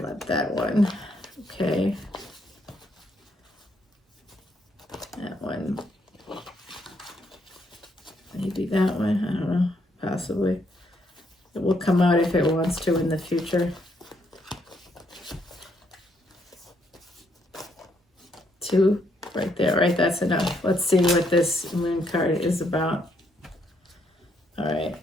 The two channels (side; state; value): both; normal; correlation 0.73